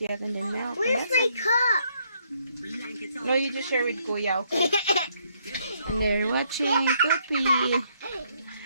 yet. And then milk. Where's my cup? No, you just share with Kuya, okay? And they're watching Tupi.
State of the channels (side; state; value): both; inverted; correlation -0.71